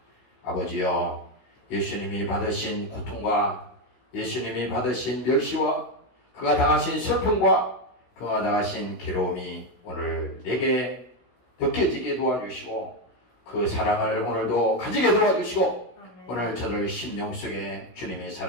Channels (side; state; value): right; late; 16 ms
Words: 아버지여, 예수님이 받으신 고통과 예수님이 받으신 멸시와 그가 당하신 슬픔과 그가 당하신 괴로움이 오늘 내게 느껴지게 도와주시고 그 사랑을 오늘도 가지게 도와주시고 오늘 저들 심령 속에 주님의